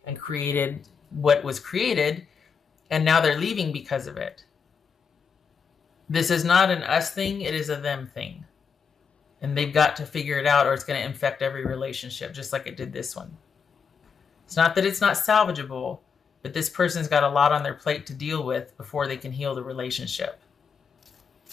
and created what was created, and now they're leaving because of it. This is not an us thing, it is a them thing. And they've got to figure it out, or it's going to infect every relationship, just like it did this one. It's not that it's not salvageable, but this person's got a lot on their plate to deal with before they can heal the relationship.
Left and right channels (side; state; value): right; quieter; 6.2 dB